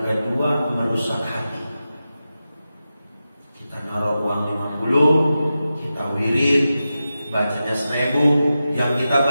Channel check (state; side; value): inverted; both; correlation -0.92